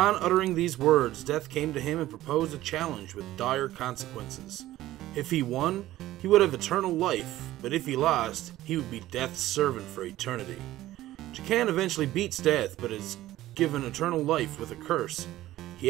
uttering these words, death came to him and proposed a challenge with dire consequences. If he won, he would have eternal life, but if he lost, he would be death's servant for eternity. Jakan eventually beats death, but his given eternal life with a curse. He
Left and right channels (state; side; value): quieter; left; 15.3 dB